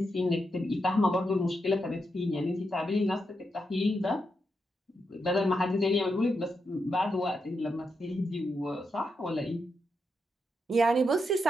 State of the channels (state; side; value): normal; both; correlation 0.84